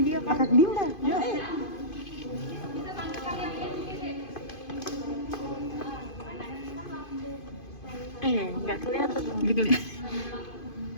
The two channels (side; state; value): right; late; 2.5 ms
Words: kakak Dinda. Ya. Nggak kelihatan.